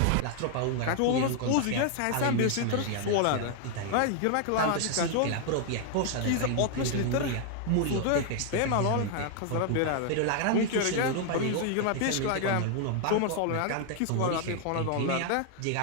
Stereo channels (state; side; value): different; both; correlation 0.00